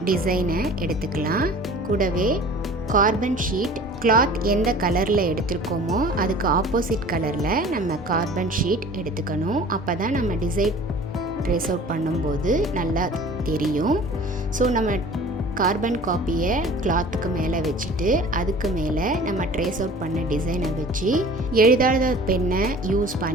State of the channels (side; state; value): both; normal; correlation 0.45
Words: டிசைனை எடுத்துக்கலாம். கூடவே கார்பன் ஷீட், கிளாத் எந்த கலரில் எடுத்துருக்கோமோ அதுக்கு ஆப்போசிட் கலரில் நம்ம கார்பன் ஷீட் எடுத்துக்கணும். அப்போ தான் நம்ம டிசைன் ட்ரேஸ் அவுட் பண்ணும்போது நல்லா தெரியும். ஸோ நம்ம கார்பன் காப்பியை கிளாத்துக்கு மேலே வச்சுட்டு அதுக்கு மேலே நம்ம ட்ரேஸ் அவுட் பண்ண டிசைனை வச்சு எழுதாத பென்னை யூஸ்